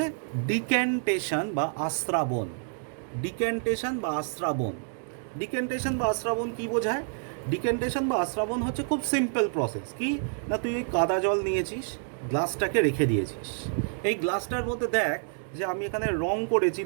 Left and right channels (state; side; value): silent; left; 59 dB below the other